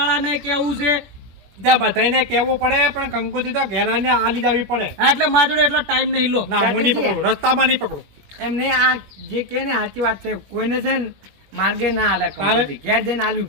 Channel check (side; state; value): left; late; 21 ms